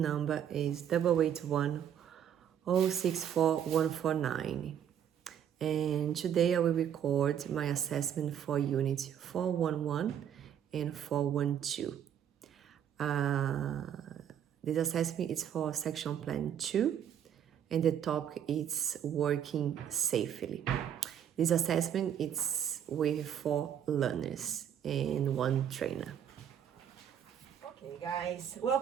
number is 881064149. And today I will record my assessment for Unit 411 and 412. This assessment is for Section Plan 2, and the topic is working safely. This assessment is with 4 learners and 1 trainer. Okay, guys,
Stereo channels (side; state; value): left; quieter; 9.3 dB